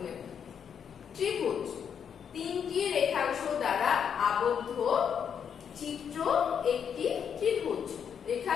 ত্রিভুজ তিনটি রেখাংশ দ্বারা আবদ্ধ চিত্র একটি ত্রিভুজ।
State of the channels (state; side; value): quieter; right; 7.7 dB